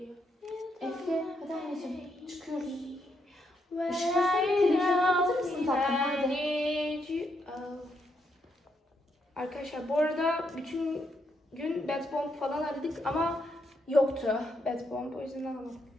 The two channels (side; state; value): both; normal; correlation 0.78